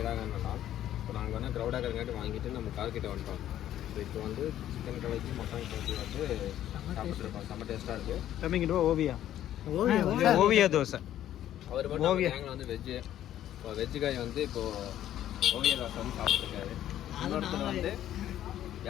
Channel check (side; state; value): right; quieter; 12.0 dB